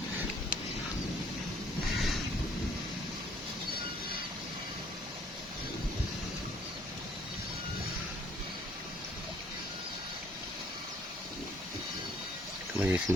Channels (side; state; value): both; normal; correlation 0.61